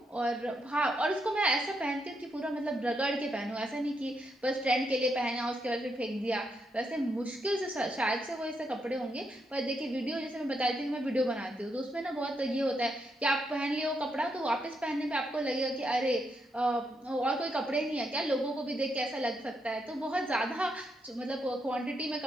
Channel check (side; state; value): both; normal; correlation 0.80